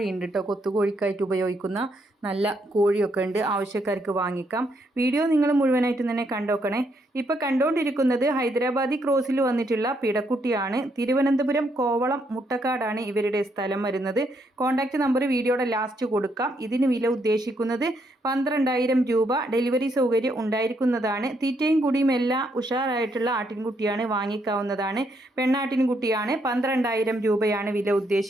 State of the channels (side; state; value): both; normal; correlation 0.75